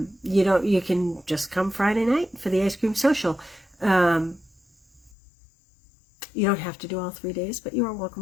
can just come Friday night for the ice cream social. You don't have to do all 3 days, but you are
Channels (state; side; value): drops out; right; at 5.1 s